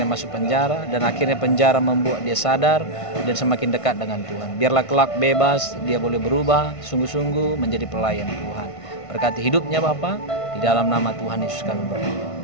masuk penjara, dan akhirnya penjara membuat dia sadar dan semakin dekat dengan Tuhan. Biarlah kelak bebas, dia boleh berubah sungguh-sungguh menjadi pelayan Tuhan. Berkati hidupnya Bapak, di dalam nama Tuhan Yesus kami berdoa.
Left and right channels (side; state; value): right; late; 1.5 ms